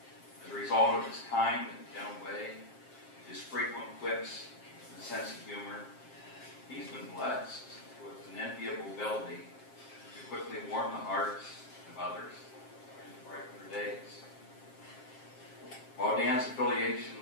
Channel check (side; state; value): right; late; 7.5 ms